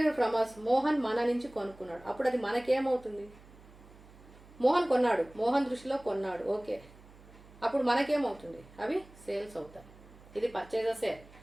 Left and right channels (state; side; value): noise; right; hum, 22 dB below the sound